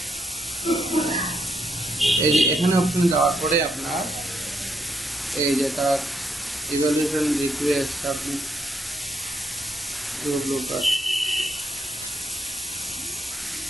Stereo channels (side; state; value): both; normal; correlation 0.77